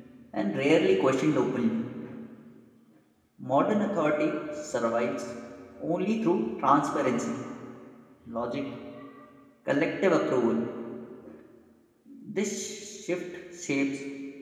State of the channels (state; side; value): identical; both; correlation 1.00